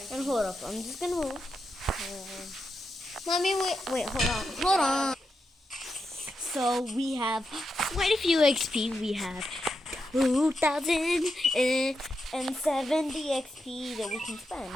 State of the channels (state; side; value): normal; both; correlation 0.86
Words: And hold up, I'm just gonna move. Mommy, wait, hold on. So we have quite a few XP. We have 2,070 XP that we can